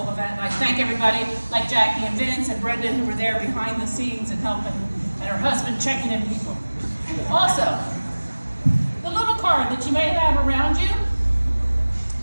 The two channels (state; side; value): inverted; both; correlation -1.00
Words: event. And I thank everybody like Jackie and Vince and Brenda who were there behind the scenes and helping, and her husband checking in people. Also, the little card that you may have around you,